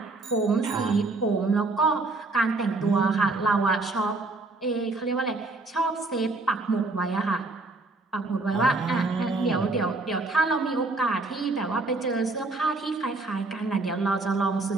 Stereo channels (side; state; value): left; quieter; 3.3 dB